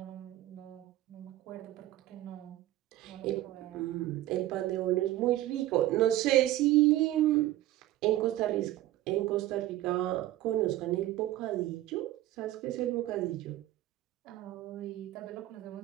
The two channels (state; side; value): quieter; left; 15.0 dB